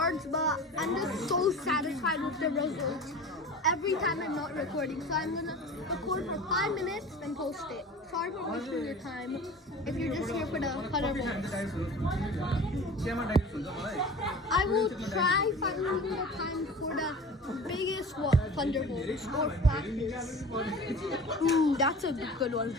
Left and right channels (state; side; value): normal; both; correlation 0.38